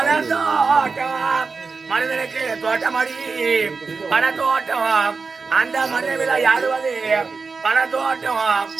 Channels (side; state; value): left; quieter; 4.6 dB